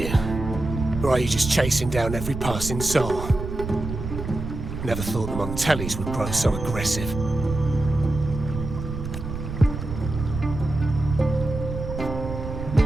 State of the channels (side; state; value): right; noise; rumble, 7 dB below the sound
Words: Or are you just chasing down every passing soul? Never thought the Montellis would grow so aggressive.